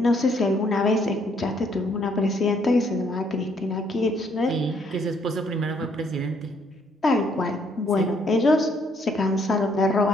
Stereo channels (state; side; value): normal; both; correlation 0.68